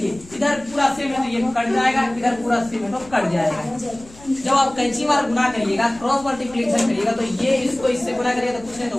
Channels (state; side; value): noise; left; rumble, 22 dB below the sound